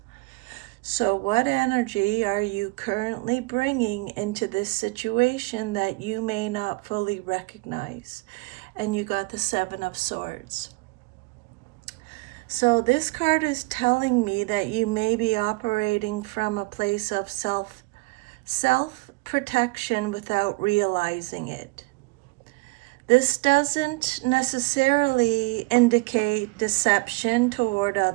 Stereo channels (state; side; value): quieter; left; 25.4 dB